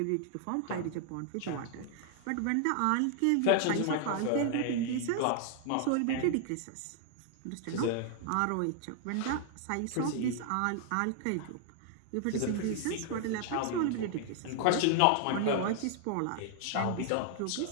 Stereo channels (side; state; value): both; different; correlation 0.00